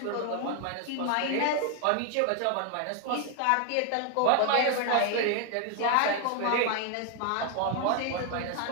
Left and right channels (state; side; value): different; both; correlation 0.00